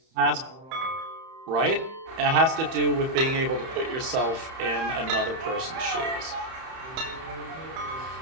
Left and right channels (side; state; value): left; late; 31 ms